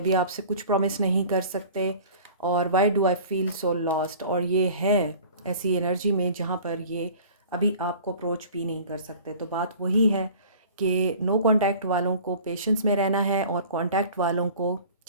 आपसे कुछ प्रॉमिस नहीं कर सकते। और why do I feel so lost, और ये है ऐसी एनर्जी में जहाँ पर ये अभी आपको अप्रोच भी नहीं कर सकते। तो बात वही है कि नो कांटेक्ट वालों को पेशेंस में रहना है और कांटेक्ट वालों को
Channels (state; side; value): inverted; both; correlation -0.44